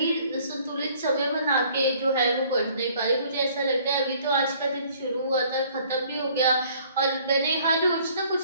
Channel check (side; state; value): both; inverted; correlation -0.57